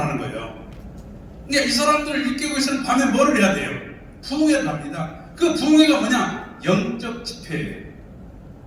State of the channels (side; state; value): both; identical; correlation 1.00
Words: 거예요. 그러니까 이 사람들을 일깨우고 있으면 밤에 뭐를 해야 돼요? 부흥회를 합니다. 그 부흥회가 뭐냐? 영적 집회예요.